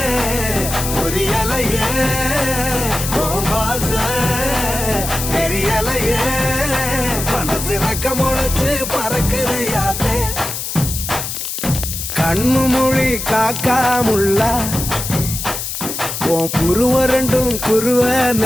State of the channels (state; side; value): noise; left; hiss, 5 dB below the sound